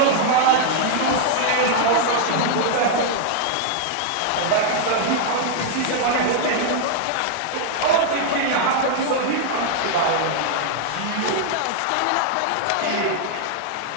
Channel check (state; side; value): different; both; correlation 0.00